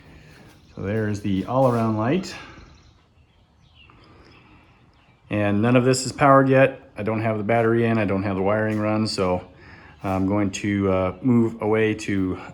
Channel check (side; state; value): both; identical; correlation 1.00